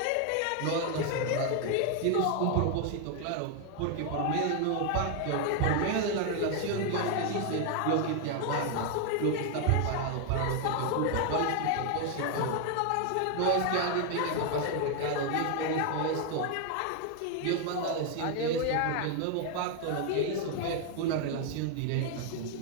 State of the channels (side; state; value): both; different; correlation 0.01